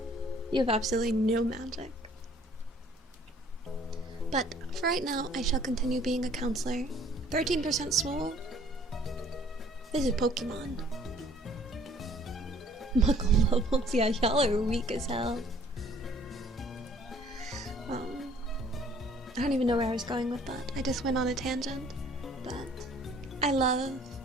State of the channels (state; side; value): normal; both; correlation 0.56